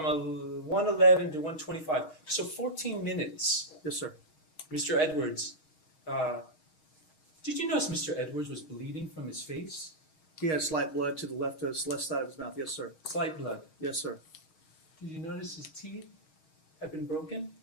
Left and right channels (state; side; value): late; right; 6.4 ms